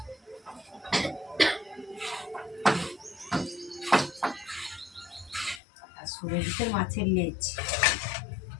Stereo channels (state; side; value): drops out; right; at 5.6 s